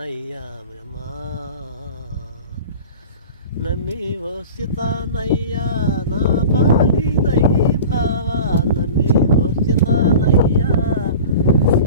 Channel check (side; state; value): both; inverted; correlation -0.37